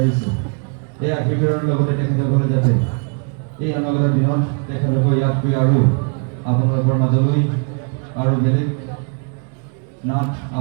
এই আশীৰ্বাদৰ লগতে তেখেতসকলে যাতে এই অনাগত দিনত তেখেতসকল ইয়াত গৈ আৰু আপোনালোকৰ মাজলৈ আৰু বেলেগ নাট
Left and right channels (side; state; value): left; quieter; 39.3 dB